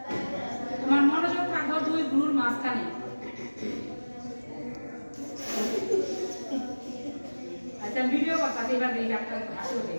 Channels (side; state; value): both; inverted; correlation -1.00